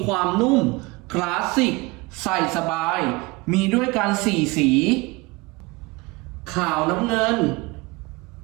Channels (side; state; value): left; quieter; 24.4 dB